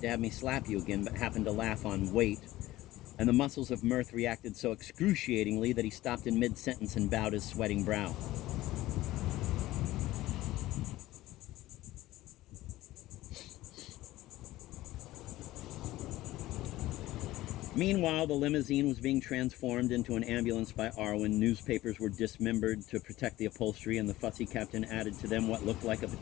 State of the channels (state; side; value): quieter; right; 16.6 dB